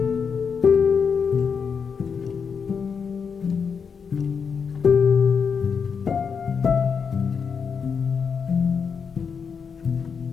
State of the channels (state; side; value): quieter; right; 6.2 dB